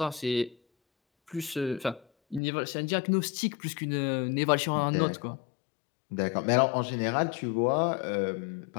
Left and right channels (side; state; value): right; drops out; at 2.4 s